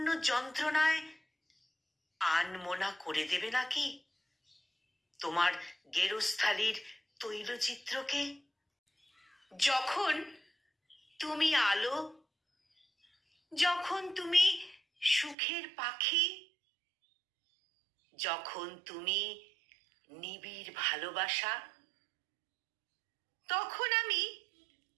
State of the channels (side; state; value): left; drops out; at 15.4 s